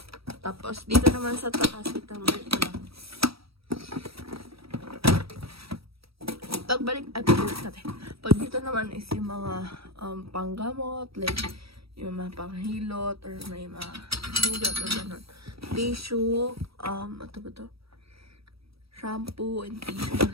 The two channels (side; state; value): left; late; 0.76 ms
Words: Tapos, dito naman sa taas, ito lang. Pagbalik natin. Pag dito naman is yung mga panggamot, like yung mga panghilot, or may mga hugot or gano'n. Tissue, ito ba ito? Shampoo and tissue